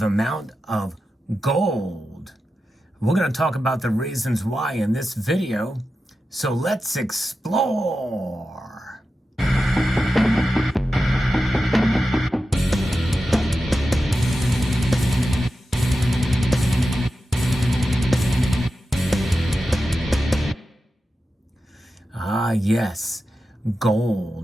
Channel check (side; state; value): both; normal; correlation 0.91